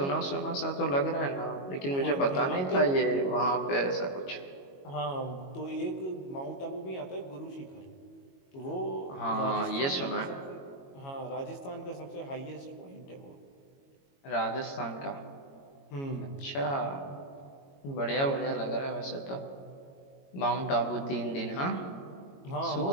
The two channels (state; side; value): late; right; 22 ms